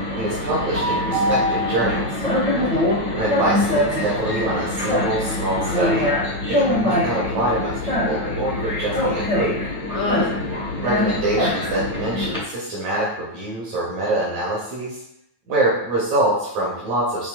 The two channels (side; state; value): left; late; 9.1 ms